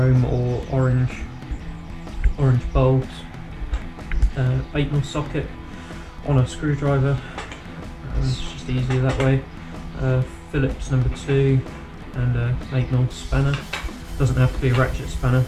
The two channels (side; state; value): both; identical; correlation 1.00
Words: or orange bulbs, 8mm socket on a screwdriver, it's just easier that way, Phillips number 2 and a 8mm spanner. Doesn't have to be a ratchet spanner,